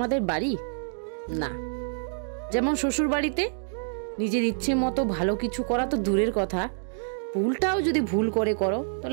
বাড়ি না। যেমন শ্বশুর বাড়িতে নিজের ইচ্ছে মতো ভালো কিছু করা তো দূরের কথা, ভুলটাও যদি ভুল করে করো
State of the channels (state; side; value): silent; left; digital silence